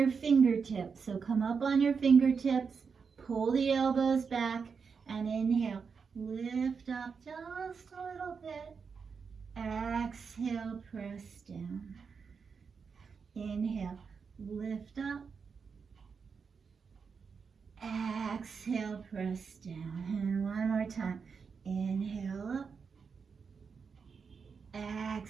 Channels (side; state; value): left; quieter; 5.7 dB